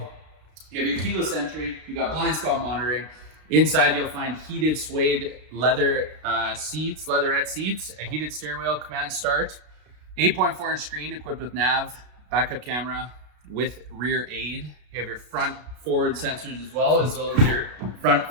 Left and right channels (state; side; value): late; left; 33 ms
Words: You have your keyless entry, you got blind spot monitoring. Inside you'll find heated suede leather seats, leatherette seats, a heated steering wheel, command start, 8.4 inch screen equipped with nav, backup camera with rear aid. You have your front forward sensors as well as your front